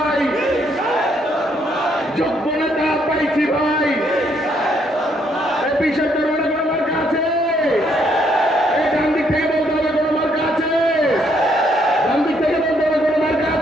যোগ্য নেতা পাইছি ভাই। বিশেষ করে কোনো মার্কা আছে? এই ডান দিক থেকে বলতে হবে কোনো মার্কা আছে? ডান দিক থেকে বলতে হবে কোনো মার্কা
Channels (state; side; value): normal; both; correlation 0.71